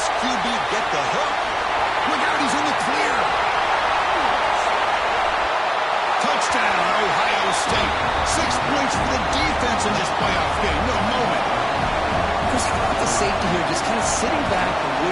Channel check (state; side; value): identical; both; correlation 1.00